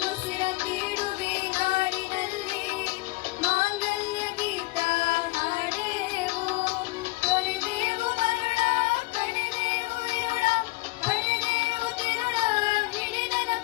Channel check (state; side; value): quieter; right; 23.2 dB